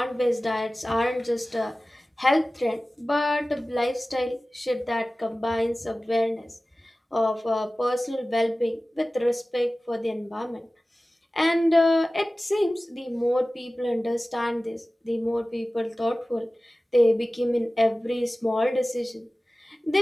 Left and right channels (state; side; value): normal; both; correlation 0.97